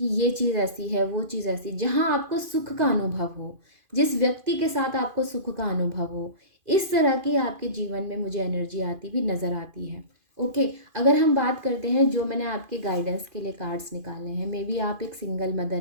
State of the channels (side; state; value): left; late; 2.5 ms